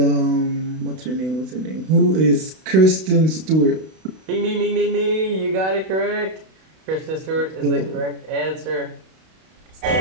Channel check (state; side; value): late; left; 32 ms